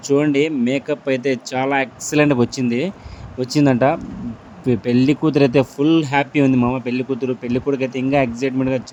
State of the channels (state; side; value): identical; both; correlation 1.00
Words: చూడండి మేకప్ అయితే చాలా ఎక్సలెంట్‌గా వచ్చిందంట. పెళ్లి కూతురైతే ఫుల్ హ్యాపీ ఉంది మామ. పెళ్లి కూతురు, పెళ్లి కొడుకైతే ఇంకా ఎక్సైట్‌మెంట్‌గా